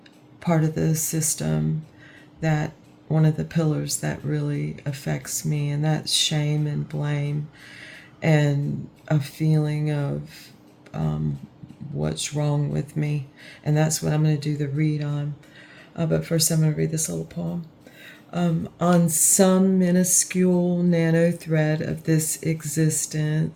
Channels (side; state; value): both; identical; correlation 1.00